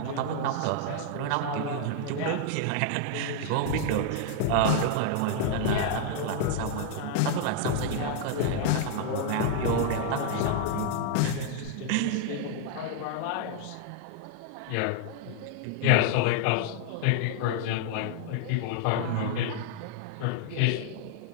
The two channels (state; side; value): different; both; correlation 0.00